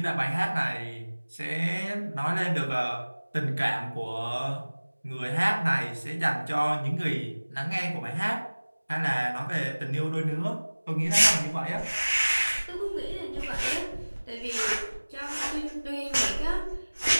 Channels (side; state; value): both; inverted; correlation -1.00